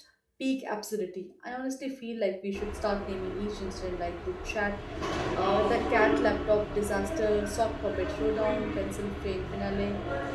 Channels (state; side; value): identical; both; correlation 1.00